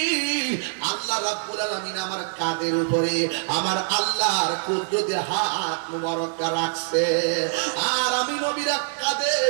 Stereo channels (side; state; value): left; silent; 62 dB below the other